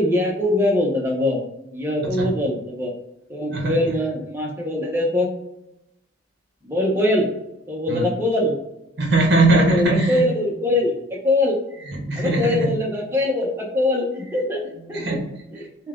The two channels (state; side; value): normal; both; correlation 0.53